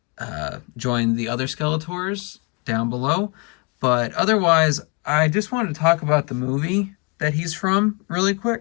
other Skeletors down below. But otherwise, I just wanted to talk about the movie that he's from really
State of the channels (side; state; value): right; quieter; 33.4 dB